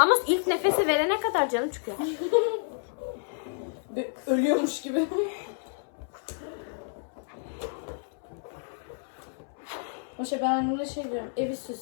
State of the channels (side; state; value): right; silent; 58 dB below the other